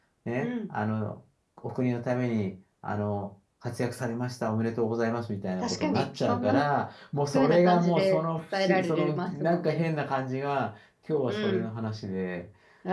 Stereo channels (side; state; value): both; identical; correlation 1.00